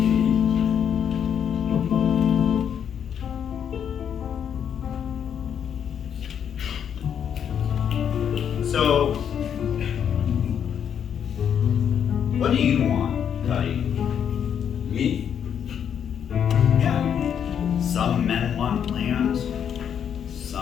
What do you want, Cuddy? Me? Yeah. Some men want land.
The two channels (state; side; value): quieter; right; 8.4 dB